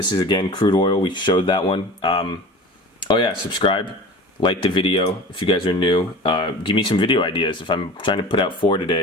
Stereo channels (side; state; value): both; normal; correlation 0.37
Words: is, again, crude oil. We showed that one. Oh yeah, subscribe, like the video if you guys are new. Give me some video ideas. If I'm trying to put out 4